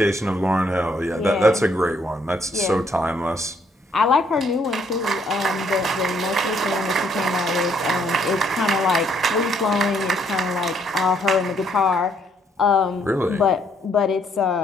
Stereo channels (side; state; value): both; normal; correlation 0.69